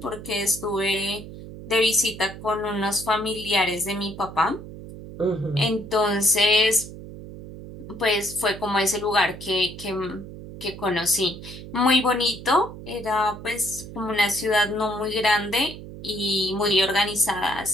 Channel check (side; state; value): right; noise; hum, 13 dB below the sound